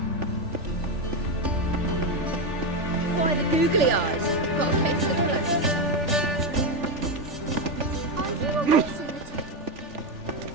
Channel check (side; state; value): left; late; 3.4 ms